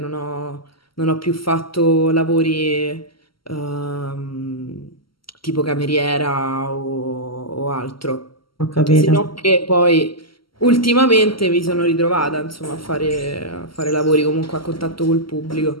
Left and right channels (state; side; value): late; right; 0.74 ms